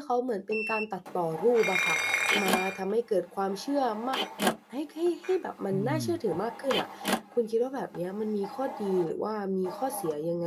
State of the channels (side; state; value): both; identical; correlation 1.00